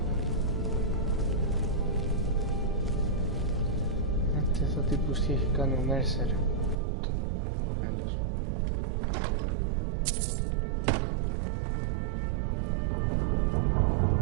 Αυτός ο τύπος τι έχει κάνει ο Mercer. Άλλος.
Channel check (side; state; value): left; drops out; at 6.8 s